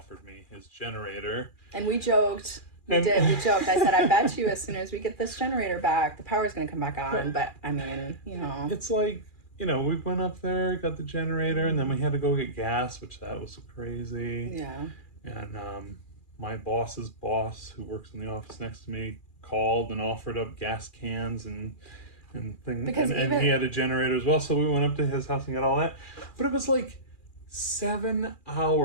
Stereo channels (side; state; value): right; late; 2.4 ms